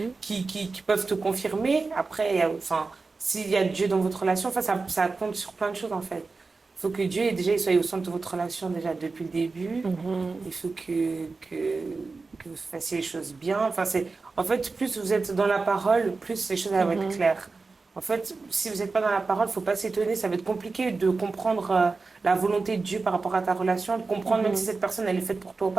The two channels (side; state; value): left; quieter; 4.0 dB